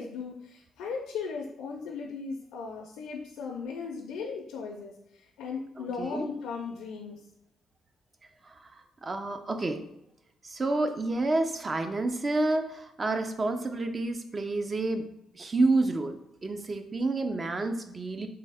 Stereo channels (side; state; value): both; normal; correlation 0.87